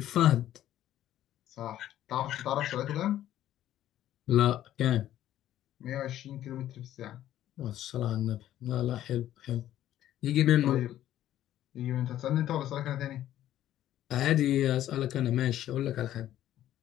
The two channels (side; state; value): right; quieter; 12.6 dB